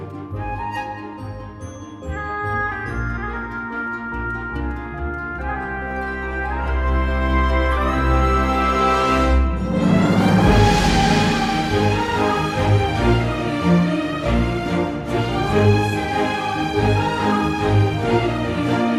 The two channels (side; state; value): both; identical; correlation 1.00